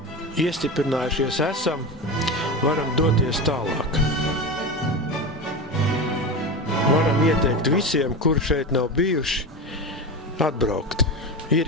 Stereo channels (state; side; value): normal; both; correlation 0.22